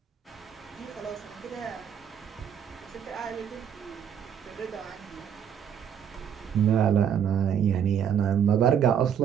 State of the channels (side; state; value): left; quieter; 8.5 dB